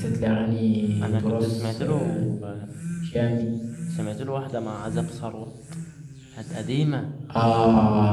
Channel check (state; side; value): identical; both; correlation 1.00